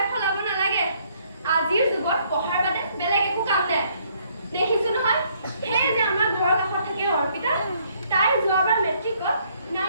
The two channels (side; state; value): both; inverted; correlation -0.67